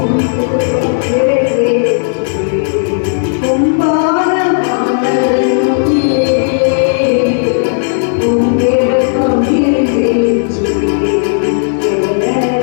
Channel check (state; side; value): silent; right; digital silence